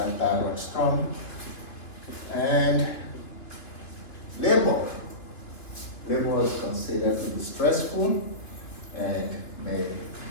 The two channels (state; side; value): late; right; 3.0 ms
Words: thyroid storm. And labor. Labor is considered to be stressful and may